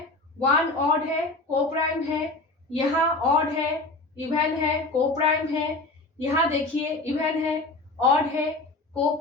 1 ऑड है, को प्राइम है। यहाँ ऑड है, इवन है, को प्राइम है। यहाँ देखिए इवन है, ऑड है, को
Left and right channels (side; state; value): right; quieter; 3.1 dB